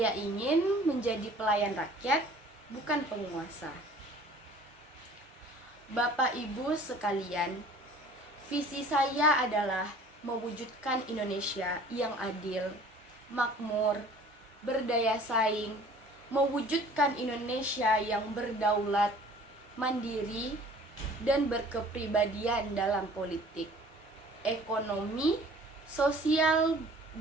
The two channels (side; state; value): both; normal; correlation 0.49